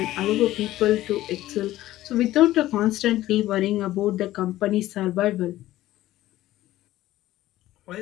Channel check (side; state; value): right; quieter; 15.2 dB